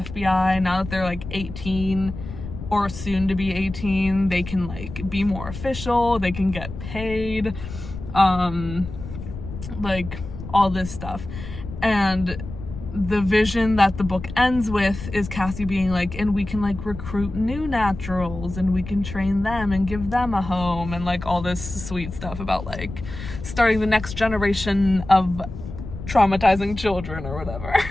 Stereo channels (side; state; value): left; noise; rumble, 10 dB below the sound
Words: Now that they're like 18 or soon to be 18, they can like be more official, they can get paid, like all this stuff. And the vision that the book ends with is Cassie being like, and we can like recruit new naturals and we can train them and give them a home, and like all this sweet stuff about like starting the next generation of traumatizing children or whatever.